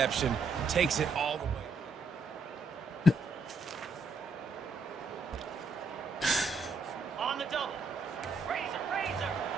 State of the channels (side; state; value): left; quieter; 3.2 dB